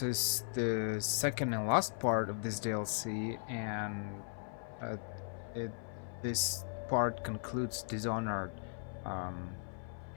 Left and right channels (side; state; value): right; silent; 53 dB below the other